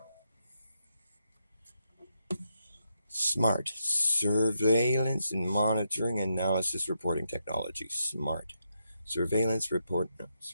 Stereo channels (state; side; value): inverted; both; correlation -0.82